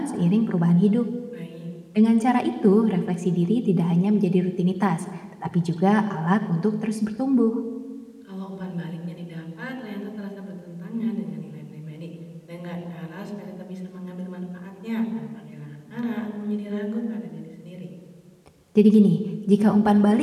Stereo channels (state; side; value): identical; both; correlation 1.00